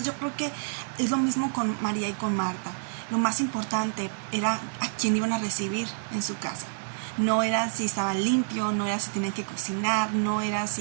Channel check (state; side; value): silent; left; digital silence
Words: yo creo que es lo mismo con María y con Marta. Lo más importante era a quién iban a recibir en su casa. No era si estaban limpios, no era si tenían que cocinar, no era